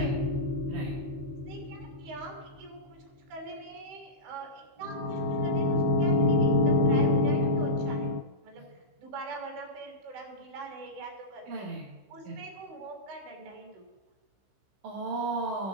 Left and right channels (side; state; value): left; late; 16 ms